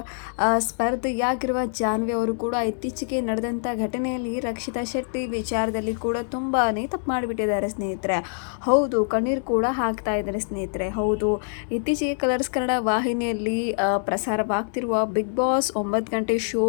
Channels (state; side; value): silent; right; 60 dB below the other